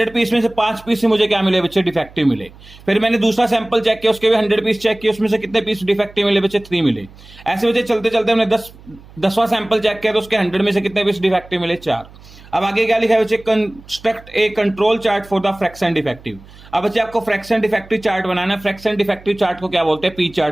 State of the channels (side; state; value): right; noise; hum, 22 dB below the sound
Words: पीस में से 5 पीस से मुझे क्या मिले बच्चे, डिफेक्टिव मिले। फिर मैंने दूसरा सैंपल चेक किया, उसके भी 100 पीस चेक किए, उसमें से कितने पीस डिफेक्टिव मिले बच्चे, 3 मिले। ऐसे बच्चे चलते चलते हमने 10वां सैंपल चेक किया तो उसके 100 में से कितने पीस डिफेक्टिव मिले, 4। अब आगे क्या लिखा है बच्चे, construct A control chart for the fraction defective. अब बच्चे आपको फ्रैक्शन डिफेक्टिव चार्ट बनाना है। फ्रैक्शन डिफेक्टिव चार्ट को क्या बोलते हैं, पी